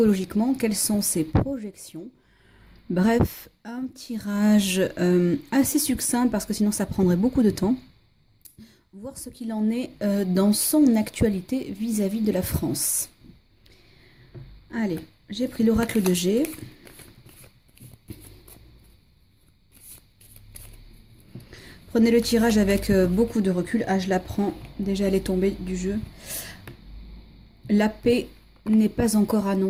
Quelles sont ses projections? Bref, un tirage assez succinct parce que sinon ça prendrait beaucoup de temps. Voir ce qu'il en est dans son actualité vis-à-vis de la France. Allez, j'ai pris l'oracle de G. Prenez le tirage avec beaucoup de recul. Ah, je la prends. Déjà, elle est tombée du jeu. La paix n'est pas encore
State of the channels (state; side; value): identical; both; correlation 1.00